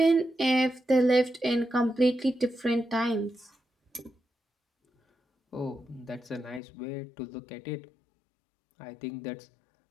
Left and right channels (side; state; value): right; drops out; at 6.6 s